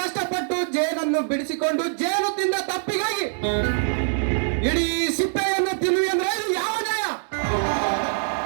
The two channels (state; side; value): silent; left; 63 dB below the other